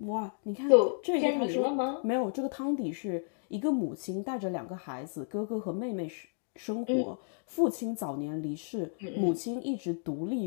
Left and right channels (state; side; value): silent; right; digital silence